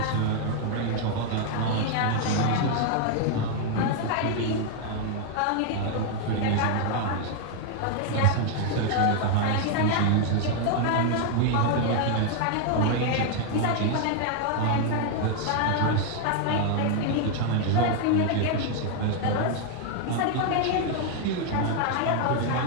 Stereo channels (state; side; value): different; both; correlation 0.00